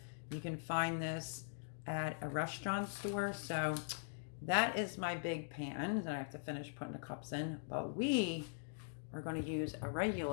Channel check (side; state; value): right; silent; digital silence